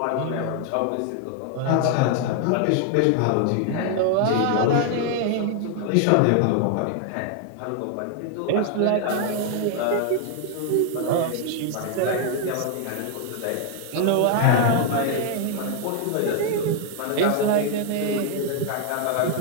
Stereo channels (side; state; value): both; different; correlation 0.00